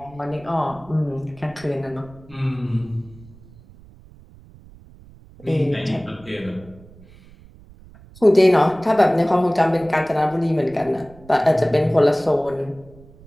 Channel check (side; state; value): right; noise; rumble, 23 dB below the sound